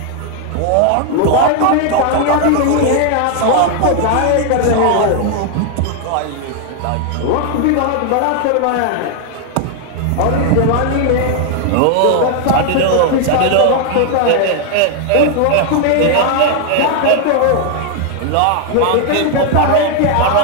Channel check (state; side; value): different; both; correlation 0.00